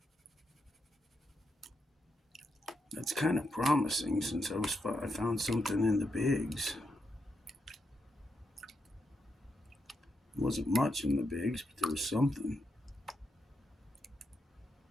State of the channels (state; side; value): normal; both; correlation 0.83